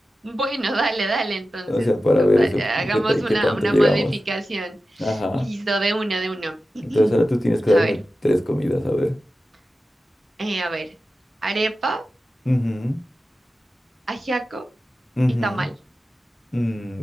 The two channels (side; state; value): both; normal; correlation 0.93